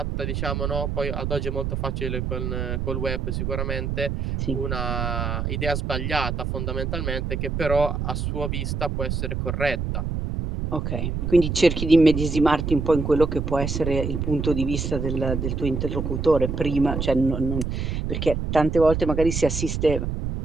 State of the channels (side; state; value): right; noise; rumble, 2 dB below the sound